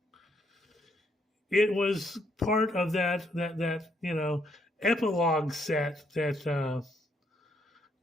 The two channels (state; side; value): normal; both; correlation 0.73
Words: it was part of that epilogue set that